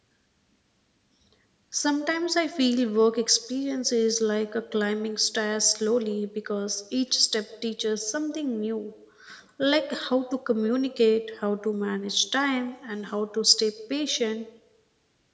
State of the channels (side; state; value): both; identical; correlation 1.00